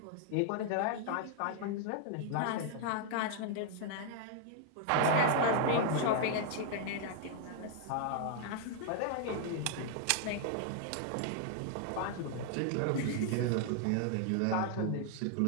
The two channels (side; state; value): both; different; correlation 0.00